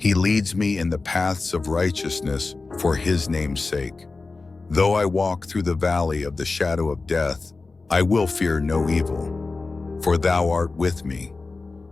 leads me in the paths of righteousness for his name's sake. Though I walk through the valley of the shadow of death, I will fear no evil, for thou art with me.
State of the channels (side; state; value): right; quieter; 3.8 dB